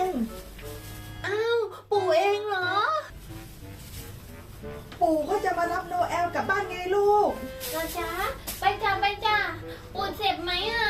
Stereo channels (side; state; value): both; identical; correlation 1.00